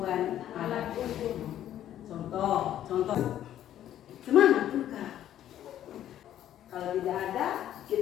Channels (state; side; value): quieter; right; 11.6 dB